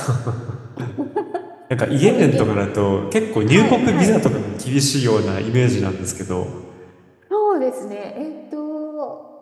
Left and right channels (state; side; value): identical; both; correlation 1.00